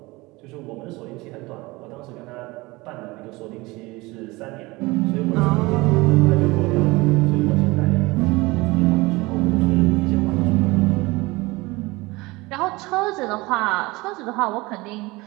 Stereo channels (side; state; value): left; quieter; 22.5 dB